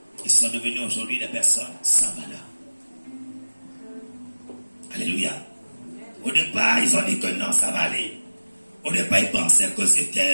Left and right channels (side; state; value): both; inverted; correlation -1.00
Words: Ils sont devenus aujourd'hui des personnes sans valeur. Alléluia. Au départ, ils ont dit que non, ça va aller. Au départ, ils pensaient que